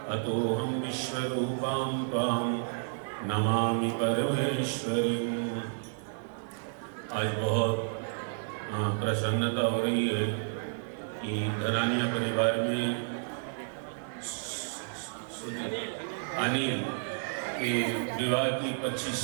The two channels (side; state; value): left; silent; digital silence